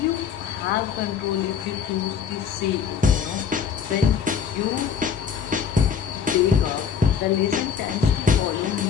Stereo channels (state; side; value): quieter; right; 7.0 dB